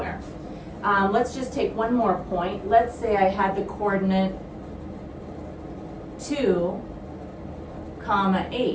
Let's just take one more point. Let's say I had the coordinate 2,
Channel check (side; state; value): both; identical; correlation 1.00